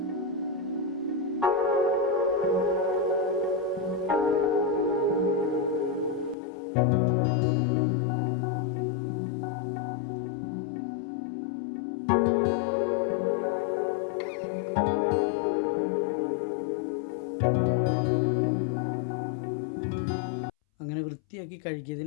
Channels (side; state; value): right; drops out; at 6.4 s